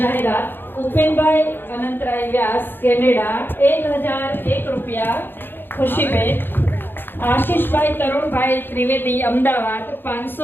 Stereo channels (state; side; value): late; right; 0.099 ms